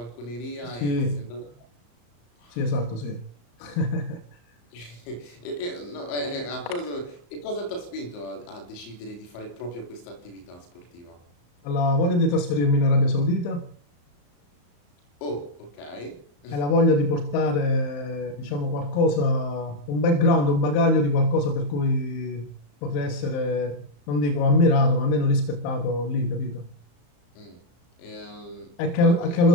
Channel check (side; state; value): right; late; 34 ms